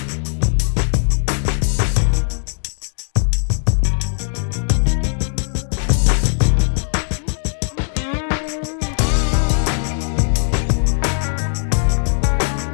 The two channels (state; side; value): silent; right; digital silence